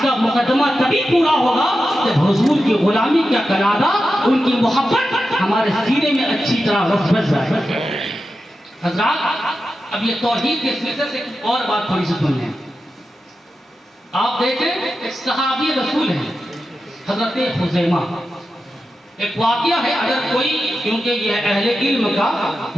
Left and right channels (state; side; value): normal; both; correlation 0.91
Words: کا مقدمہ تبھی پورا ہوگا جب حضور کی غلامی کا قلادہ, ان کی محبت ہمارے سینے میں اچھی طرح رس جائے. حضرات اب یہ توحید کے سلسلے سے اور بات تھوڑی سی سن لیں. آپ دیکھیں ایک صحابی رسول ہیں حضرت خزیمہ. ایک واقعہ ہے, اگر کوئی, کیونکہ یہ اہل علم کا